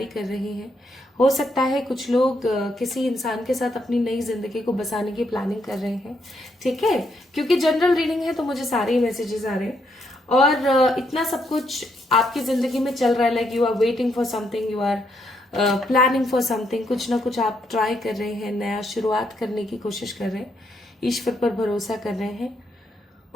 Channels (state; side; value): normal; both; correlation 0.76